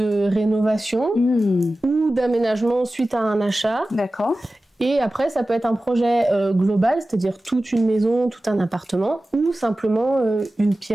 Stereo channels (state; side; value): normal; both; correlation 0.96